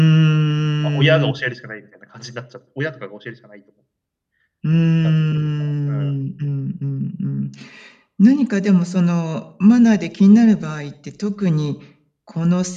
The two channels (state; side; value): identical; both; correlation 1.00